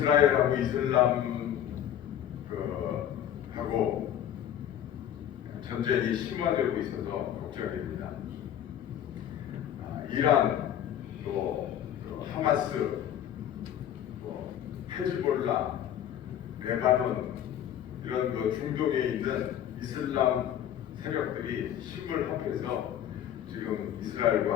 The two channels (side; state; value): right; quieter; 10.5 dB